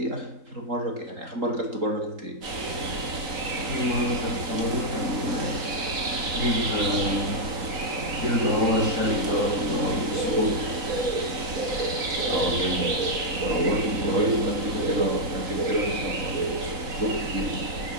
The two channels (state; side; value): late; left; 4.0 ms